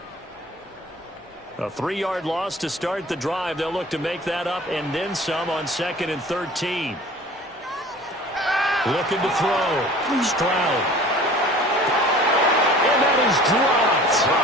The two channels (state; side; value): normal; both; correlation 0.45